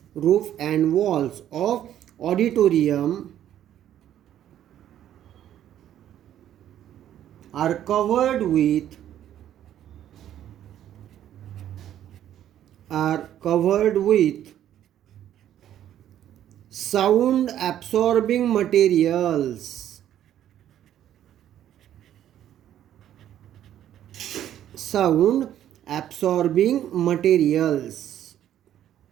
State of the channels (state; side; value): quieter; left; 11.3 dB